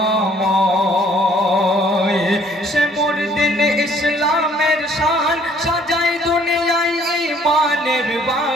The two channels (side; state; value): both; normal; correlation 0.60